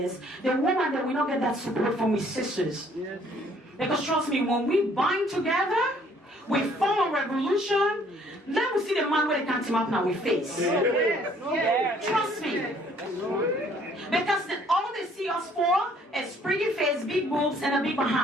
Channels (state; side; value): normal; both; correlation 0.61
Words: the woman that we don't get that support from his sisters. Because trust me, when we bind together, we form a revolution, then we see the man where they can't team up now with face. Trust me. Because all they see us for is pretty face, big boobs, and a big